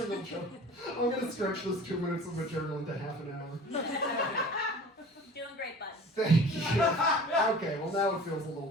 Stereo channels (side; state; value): both; normal; correlation 0.43